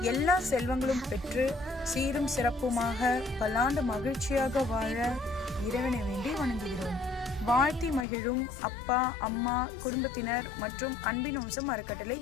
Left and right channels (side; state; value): right; drops out; at 8.1 s